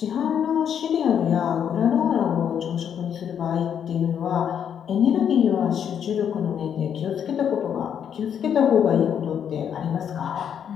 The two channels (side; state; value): right; quieter; 8.5 dB